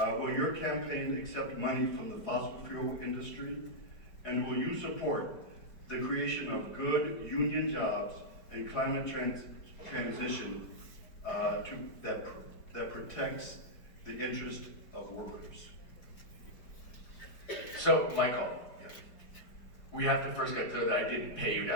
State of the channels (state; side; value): late; right; 4.7 ms